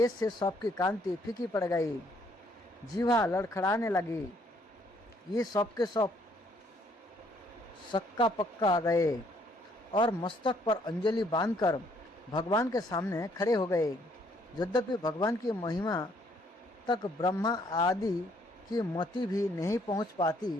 से सबकी कांति फीकी पड़ गई, जीवा लड़खड़ाने लगी। ये सबके सब सक्का पक्का गए और मस्तक पर अंजलि बांधकर भगवान के सामने खड़े हो गए। यद्यपि भगवान की महिमा तक ब्रह्मा आदि की मति भी नहीं पहुंच पाती,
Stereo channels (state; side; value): normal; both; correlation 0.66